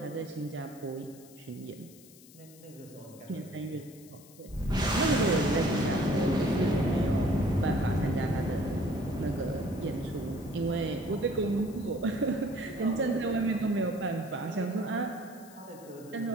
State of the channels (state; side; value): noise; left; hiss, 22 dB below the sound